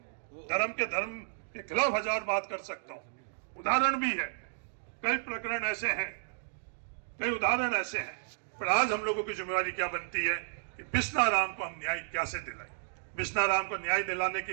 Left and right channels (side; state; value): left; silent; digital silence